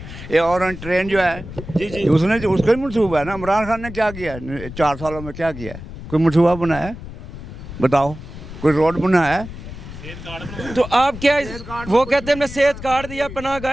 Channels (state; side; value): noise; left; rumble, 12 dB below the sound